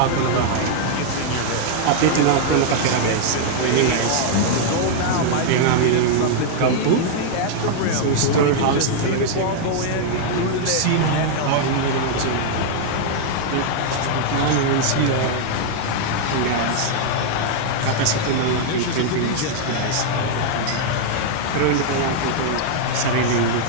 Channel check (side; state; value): both; different; correlation 0.00